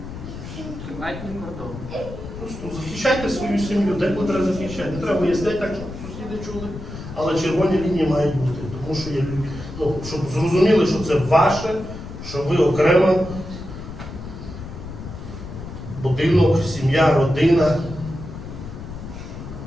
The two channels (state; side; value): noise; left; rumble, 11 dB below the sound